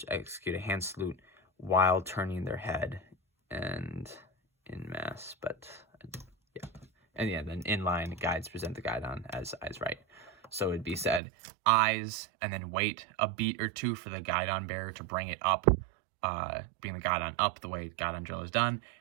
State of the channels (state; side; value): drops out; left; at 11.2 s